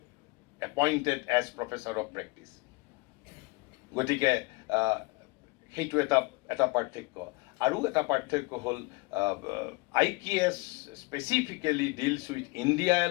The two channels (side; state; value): right; quieter; 25.3 dB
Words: appointed as professor of practice. গতিকে সেইটো এটা পাৰ্থক্য। আৰু এটা পাৰ্থক্য হ'ল IKS specifically deals with India